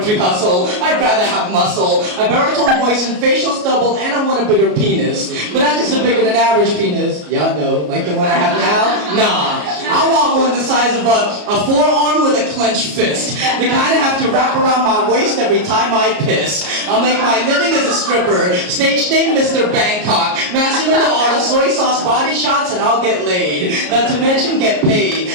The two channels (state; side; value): late; left; 33 ms